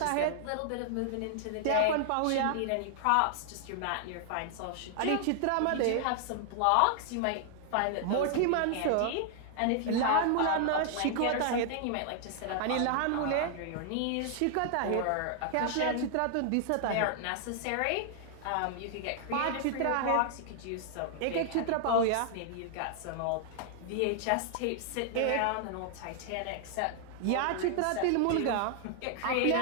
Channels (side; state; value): both; different; correlation 0.00